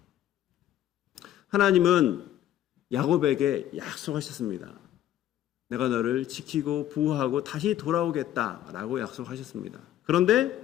하나님은 야곱에게 약속하셨습니다. 내가 너를 지키고 보호하고 다시 돌아오겠다라고 약속하셨습니다. 그런데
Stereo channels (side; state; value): right; quieter; 12.0 dB